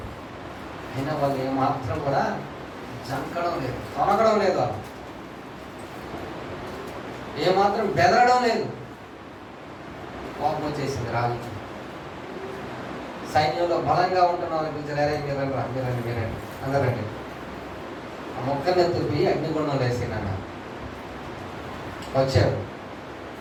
అయినా వాళ్ళు ఏమాత్రం కూడా జంకడం లేదు, తొనగడం లేదు, వాళ్ళు ఏమాత్రం బెదరడం లేదు. కోపం వచ్చేసింది రాజుకి. సైన్యంలో బలంగా ఉంటున్న వాళ్ళకి పిలిచారు, మీరండి అందరండి. ఆ మొక్కని ఎత్తుపి అగ్నిగుండంలో వేసినాన్న వచ్చారు.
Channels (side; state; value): both; identical; correlation 1.00